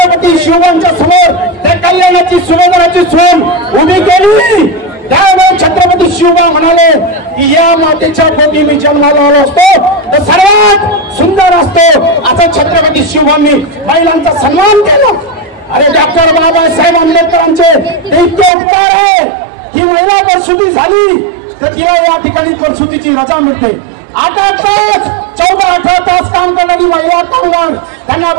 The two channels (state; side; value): drops out; left; at 18.5 s